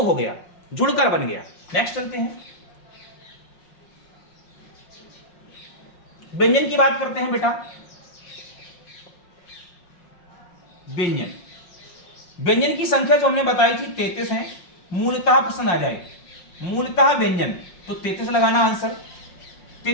गया, जुड़कर बन गया। नेक्स्ट चलते हैं, व्यंजन की बात करते हैं बेटा। व्यंजन, व्यंजन की संख्या जो हमने बताई थी 33 है। मूलतः प्रश्न आ जाए मूलतः व्यंजन तो 33 लगाना आंसर।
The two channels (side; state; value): right; late; 5.5 ms